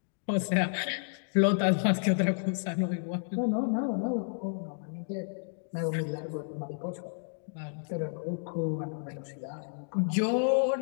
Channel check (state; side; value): silent; right; digital silence